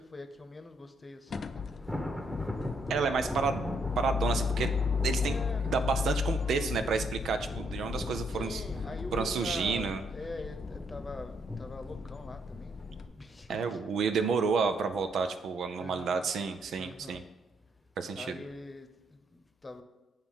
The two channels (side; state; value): both; normal; correlation 0.73